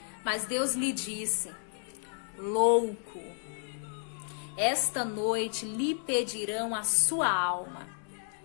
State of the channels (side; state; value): right; silent; 57 dB below the other